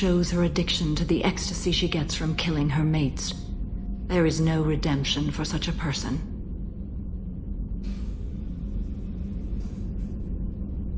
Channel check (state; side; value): identical; both; correlation 1.00